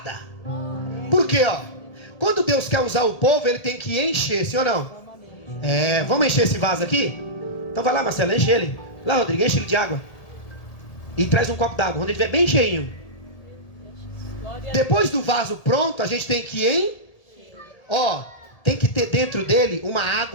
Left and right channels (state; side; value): late; right; 1.8 ms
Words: Por quê, ó? Quando Deus quer usar o povo, ele tem que encher, sim ou não? Vamos encher esse vaso aqui? Então vai lá, Marcelo, enche ele. Lá, Rodrigo, enche ele de água. E traz um copo d'água, quando ele estiver bem cheinho. Depois do vaso pronto, a gente tem que tem que ter dentro dele uma